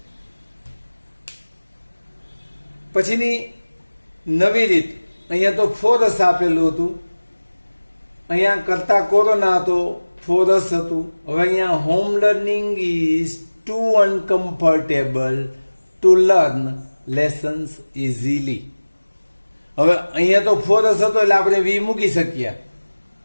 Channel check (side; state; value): both; inverted; correlation -1.00